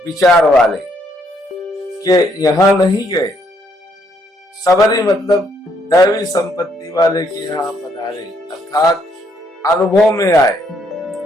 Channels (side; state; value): both; normal; correlation 0.71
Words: विचार वाले के यहाँ नहीं गए। सबरी मतलब दैवी संपत्ति वाले के यहाँ पधारे, अर्थात अनुभव में आए।